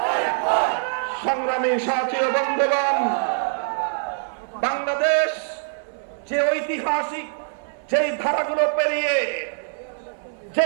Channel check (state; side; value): silent; left; digital silence